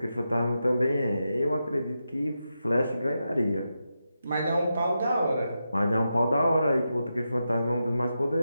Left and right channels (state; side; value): inverted; both; correlation -0.88